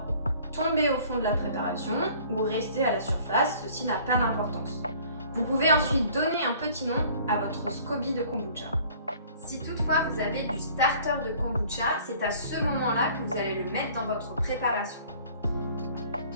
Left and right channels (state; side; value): inverted; both; correlation -0.52